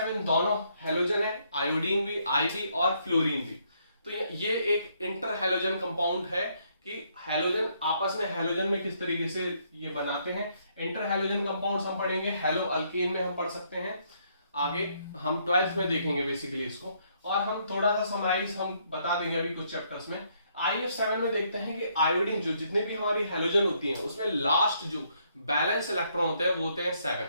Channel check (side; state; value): both; inverted; correlation -0.71